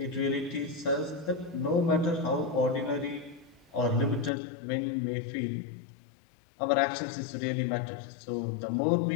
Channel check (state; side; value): drops out; right; at 4.3 s